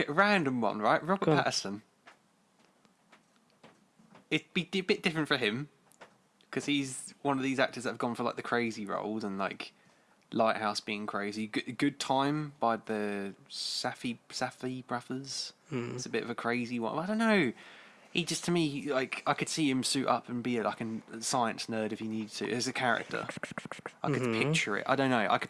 Random one, right? Robert Go on. Pattinson. It'd be a bit different for him because he's one of these actors that have gone for like the crazy roles and like Lighthouse being crazy. Good Time by the Safdie brothers. It's a bit of a crazy one. I don't know. He just, to me, like, I could see him suit up and be like a science nerd if he needed to as a character. I could picture it. I don't know. I could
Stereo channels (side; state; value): both; identical; correlation 1.00